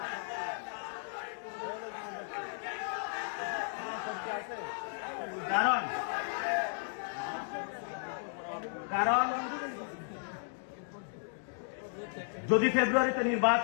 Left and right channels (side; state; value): right; silent; digital silence